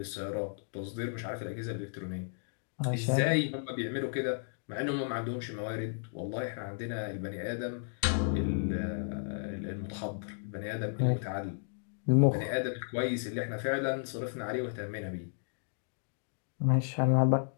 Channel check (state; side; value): silent; right; digital silence